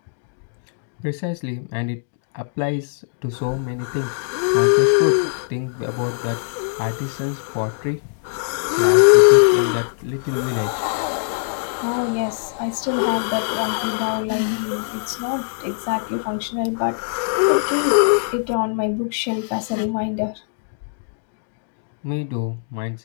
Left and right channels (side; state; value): right; silent; digital silence